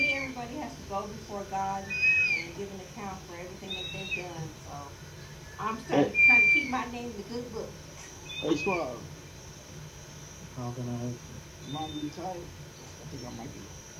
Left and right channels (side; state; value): both; identical; correlation 1.00